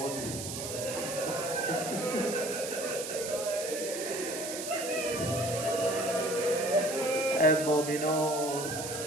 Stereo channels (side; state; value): right; noise; hiss, 7 dB below the sound